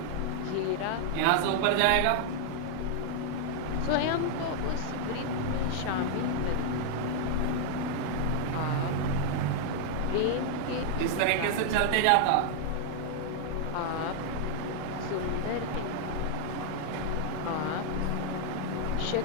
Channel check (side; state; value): both; different; correlation 0.00